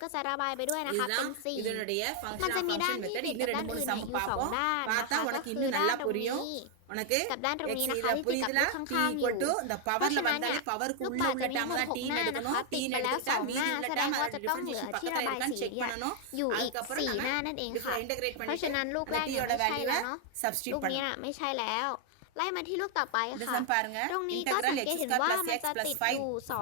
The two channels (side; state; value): both; different; correlation 0.00